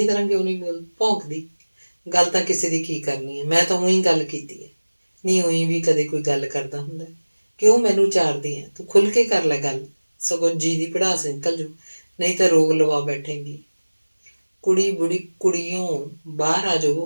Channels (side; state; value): both; inverted; correlation -1.00